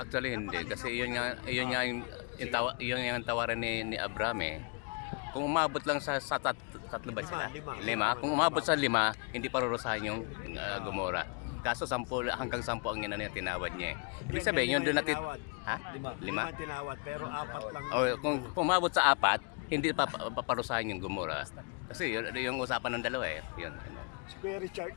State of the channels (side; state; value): right; quieter; 35.1 dB